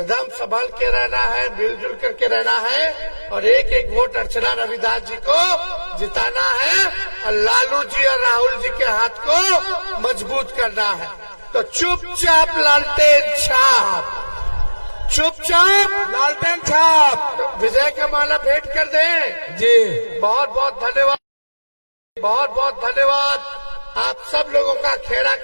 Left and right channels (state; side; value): inverted; both; correlation -1.00